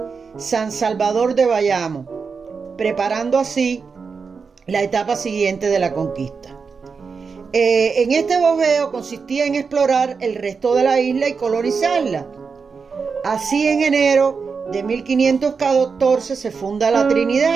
San Salvador de Bayamo, preparando así la etapa siguiente de la conquista. En este bojeo consistía en explorar el resto de la isla y colonizarla. Así, en enero de 1514 se funda la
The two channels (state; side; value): quieter; left; 5.3 dB